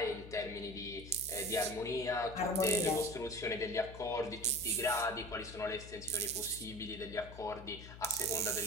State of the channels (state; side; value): noise; left; hum, 14 dB below the sound